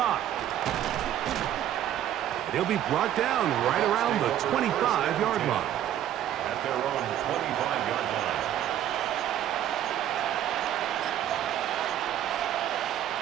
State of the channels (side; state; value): left; quieter; 11.3 dB